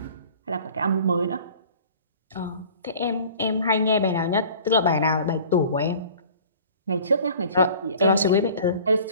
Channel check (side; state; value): both; inverted; correlation -0.46